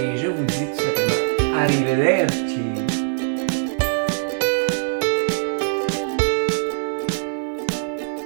je vous dis tout simplement arrivederci.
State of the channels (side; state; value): left; silent; 62 dB below the other